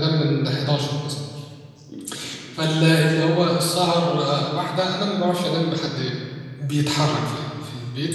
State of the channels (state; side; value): identical; both; correlation 1.00